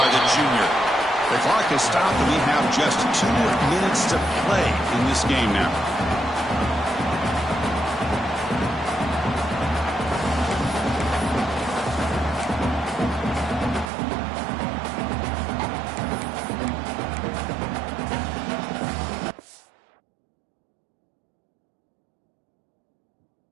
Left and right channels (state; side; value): drops out; left; at 13.9 s